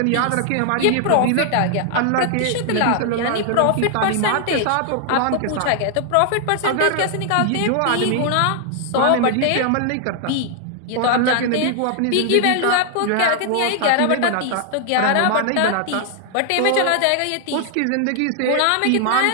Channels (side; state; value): both; different; correlation 0.00